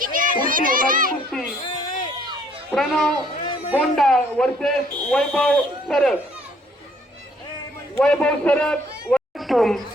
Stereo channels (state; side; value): normal; both; correlation 0.63